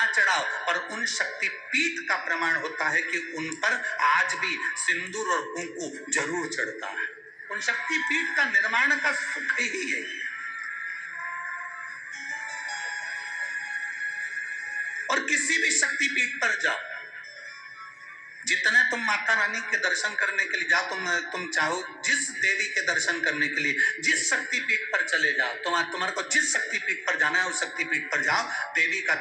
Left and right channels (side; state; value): both; identical; correlation 1.00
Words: चढ़ाओ, पर उन शक्तिपीठ का प्रमाण होता है कि उन पर आज भी सिंदूर और कुंकू जरूर चढ़ता है। उन शक्तिपीठ का निर्माण का सुख ही है। और किसी भी शक्तिपीठ पर जाओ, जितने तुम माता रानी के दर्शन करने के लिए जाओ, तुम चाहो जिस देवी के दर्शन करने के लिए जिस शक्तिपीठ पर चले जाओ, तुम्हारे को जिस शक्तिपीठ पर जाना है उस शक्तिपीठ पर जाओ। देवी का